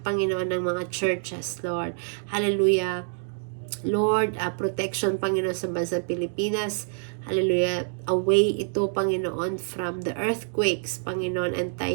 Panginoon, ng mga churches, Lord. Hallelujah. Lord, protection, Panginoon, sa bansang Pilipinas. Hallelujah. Away ito, Panginoon, from the earthquakes, Panginoon, and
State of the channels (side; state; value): left; silent; digital silence